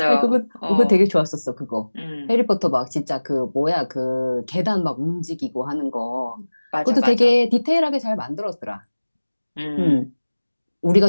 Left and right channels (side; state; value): both; inverted; correlation -1.00